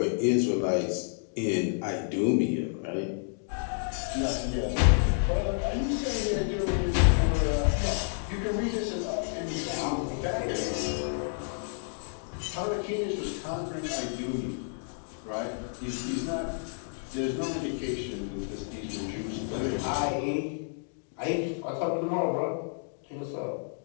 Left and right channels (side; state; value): right; silent; digital silence